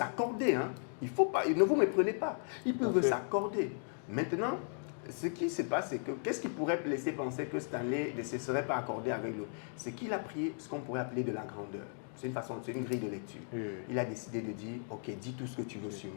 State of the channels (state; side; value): silent; right; 54 dB below the other